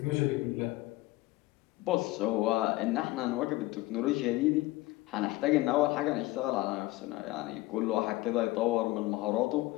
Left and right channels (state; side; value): quieter; right; 19.1 dB